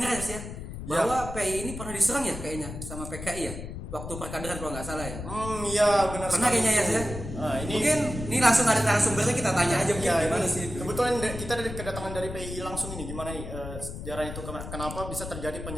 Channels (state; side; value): noise; left; rumble, 9 dB below the sound